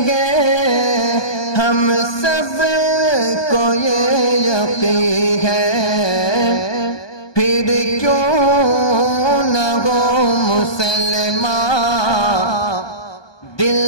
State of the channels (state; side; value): late; right; 1.2 ms